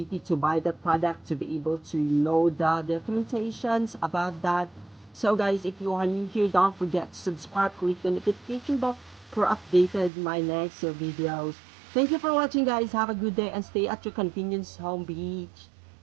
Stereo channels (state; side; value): drops out; left; at 10.1 s